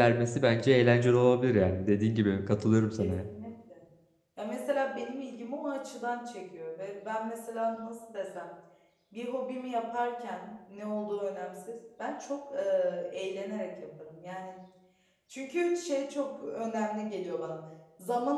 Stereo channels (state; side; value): identical; both; correlation 1.00